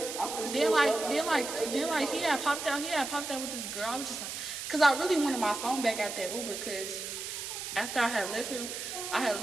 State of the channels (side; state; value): right; noise; hiss, 6 dB below the sound